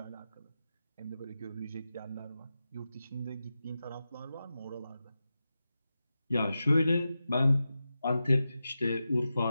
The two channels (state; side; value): inverted; both; correlation -0.92